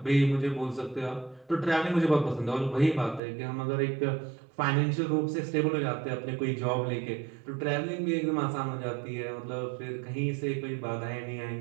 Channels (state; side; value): drops out; left; at 3.2 s